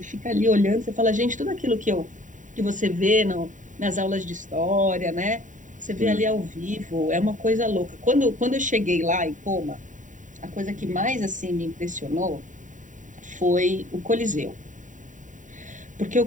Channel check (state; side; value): late; left; 0.37 ms